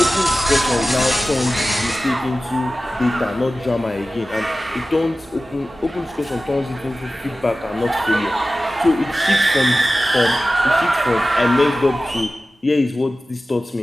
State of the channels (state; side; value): normal; both; correlation 0.95